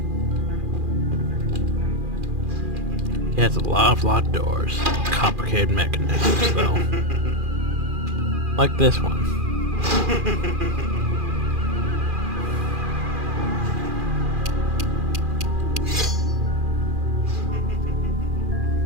He has a lot of locked doors. Complicated mechanisms, though. Like this one.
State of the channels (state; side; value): late; left; 2.4 ms